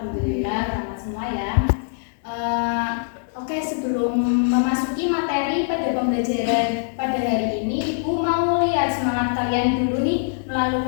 ramah semua ya. Oke, sebelum memasuki materi pada pembelajaran pada hari ini, Ibu mau lihat semangat kalian dulu nih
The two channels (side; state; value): right; silent; digital silence